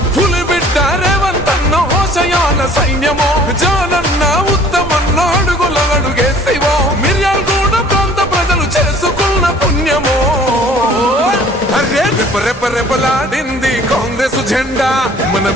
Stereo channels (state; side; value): normal; both; correlation 0.53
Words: పులిబిడ్డ రేవంతన్న హోషయాల సైన్యమో జానన్న ఉత్తమన్న అడుగుల అడుగేసివో మిర్యాలగూడ ప్రాంత ప్రజలు చేసుకున్న పుణ్యమో రెపరెపరెపలాడింది కాంగ్రెస్ జెండా మన